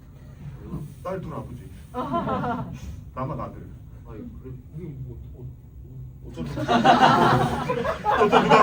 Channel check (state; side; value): identical; both; correlation 1.00